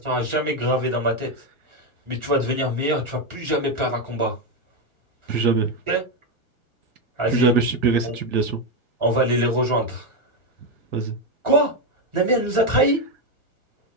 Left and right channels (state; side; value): late; left; 1.4 ms